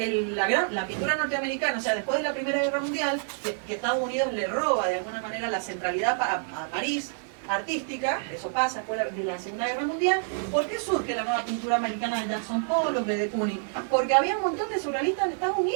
pintura norteamericana, o sea, después de la Primera Guerra Mundial, que Estados Unidos le roba de alguna manera la centralidad a París artística, eso pasa después de la Segunda Guerra Mundial. ¿Por qué surge la nueva pintura americana de Jackson Pollock, de Kooning? Porque había un montón de surrealistas en Estados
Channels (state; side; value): silent; left; digital silence